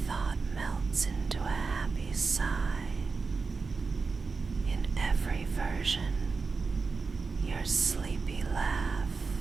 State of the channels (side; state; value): left; quieter; 4.5 dB